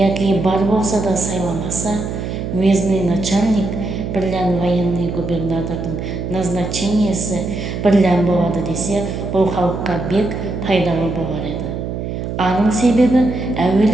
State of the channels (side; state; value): right; noise; hum, 5 dB below the sound